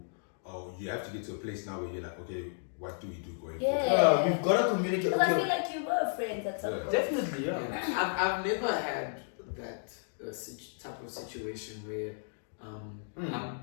Or you have to get to a place now where you're like, okay, what do we do going Yeah. forward? We've got to communicate. Because I Okay, feel like you were friends at some Yeah. point. definitely, yeah. I've never had that type of situation where I'm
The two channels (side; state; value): right; silent; digital silence